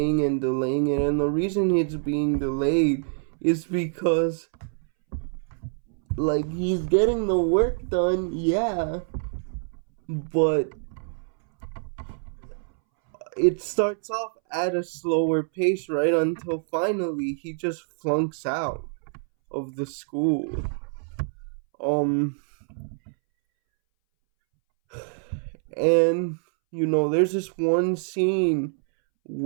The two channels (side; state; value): left; silent; 61 dB below the other